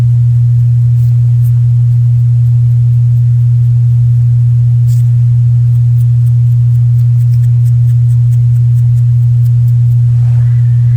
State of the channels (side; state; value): both; identical; correlation 1.00